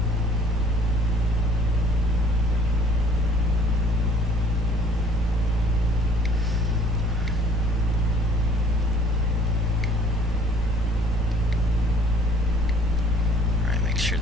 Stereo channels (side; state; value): both; normal; correlation 0.56